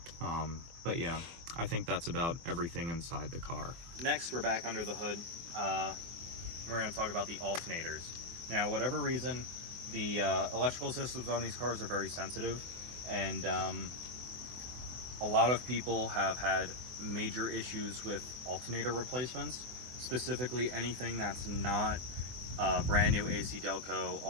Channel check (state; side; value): late; left; 24 ms